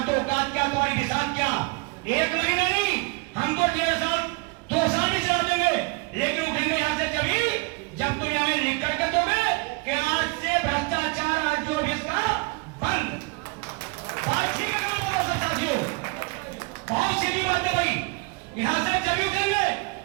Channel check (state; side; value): quieter; left; 28.3 dB